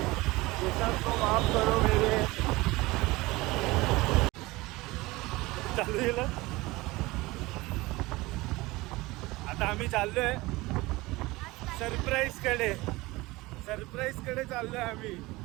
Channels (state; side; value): quieter; left; 21.1 dB